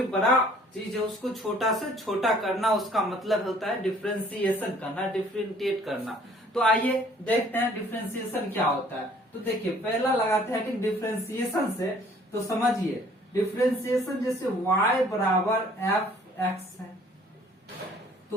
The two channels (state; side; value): normal; both; correlation 0.57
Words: बड़ा चीज है उसको छोटा से छोटा करना, उसका मतलब होता है डिफरेंशिएशन करना, डिफरेंशिएट करना। तो आइए देखते हैं डिफरेंशिएशन क्या होता है। तो देखिए पहला लगाते हैं कि डिफरेंशिएशन से, तो समझिए डिफरेंशिएशन जैसे y बराबर एफ एक्स है, तो